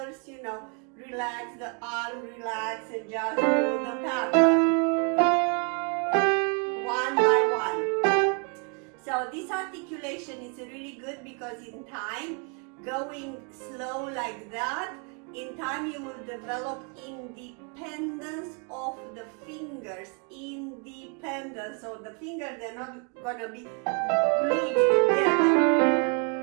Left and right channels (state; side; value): quieter; left; 37.1 dB